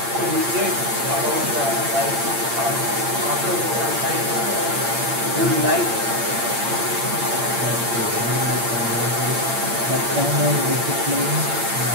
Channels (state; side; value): late; left; 8.7 ms